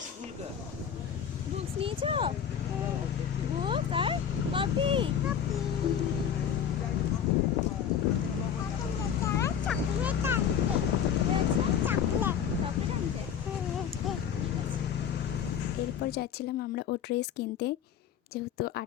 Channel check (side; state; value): right; quieter; 8.4 dB